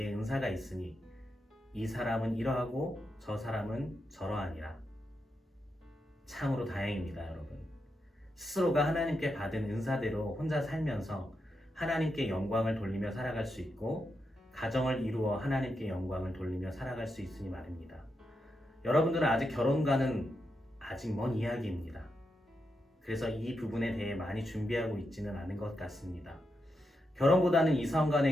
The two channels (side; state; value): both; normal; correlation 0.85